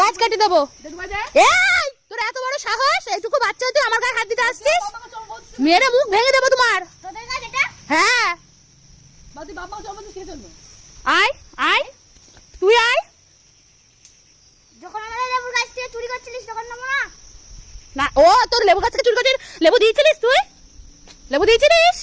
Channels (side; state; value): both; identical; correlation 1.00